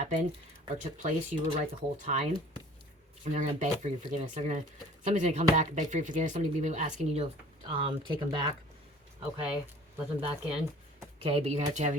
or took place, you were right the whole time. And they're going to beg for your forgiveness. Somebody's going to come back and beg for your forgiveness. Somebody will be asking you to take them back, okay? Let them back in, okay? But you're going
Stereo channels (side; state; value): both; normal; correlation 0.49